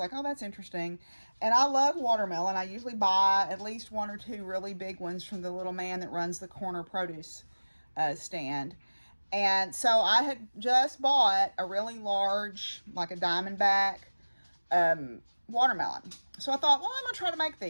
oh, that's interesting. And I love watermelon. I usually buy at least 1 or 2 really big ones from the little man that runs the corner produce stand. And so I had just bought a really large, like a Diamondback watermelon. So I thought, well, I'm gonna try to make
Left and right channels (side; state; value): both; inverted; correlation -1.00